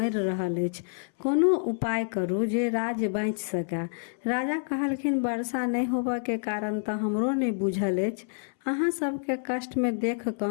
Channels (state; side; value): silent; right; 59 dB below the other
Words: रहल अछि, कोनो उपाय करू जे राज्य बाँचि सकै। राजा कहलखिन, वर्षा नहीं होबऽ के कारण तऽ हमरो नहीं बुझल अछि, अहाँ सबके कष्ट में देख कऽ